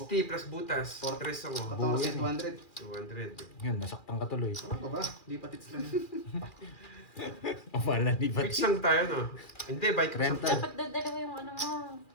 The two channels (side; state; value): right; late; 2.4 ms